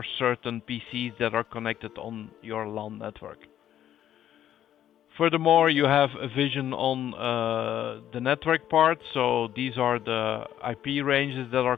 certain PCs that are connected on your LAN network. Furthermore, you have a vision on the network part. So these are the IP ranges that are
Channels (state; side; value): quieter; right; 11.2 dB